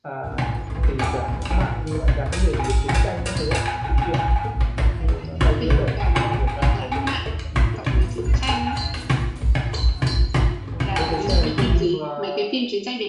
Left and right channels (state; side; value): identical; both; correlation 1.00